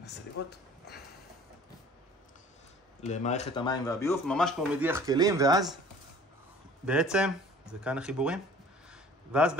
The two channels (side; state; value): both; normal; correlation 0.49